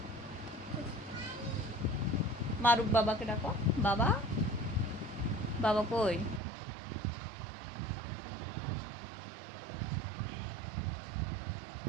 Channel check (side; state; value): left; drops out; at 6.4 s